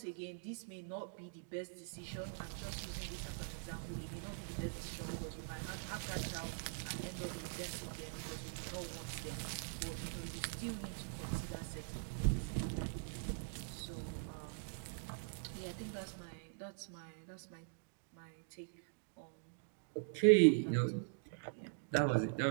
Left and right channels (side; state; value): left; silent; digital silence